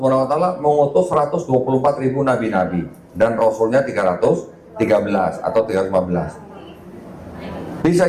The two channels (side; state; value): both; identical; correlation 1.00